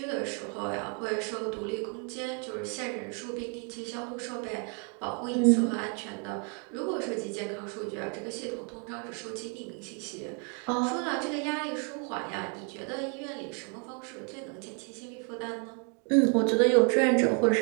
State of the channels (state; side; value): quieter; left; 38.3 dB